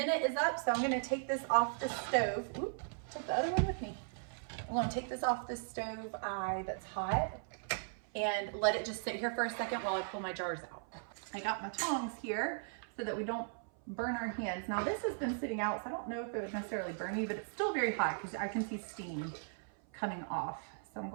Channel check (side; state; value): left; silent; 53 dB below the other